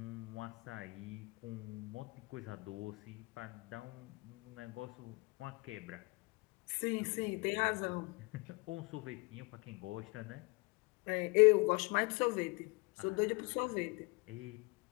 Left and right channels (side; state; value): right; quieter; 27.3 dB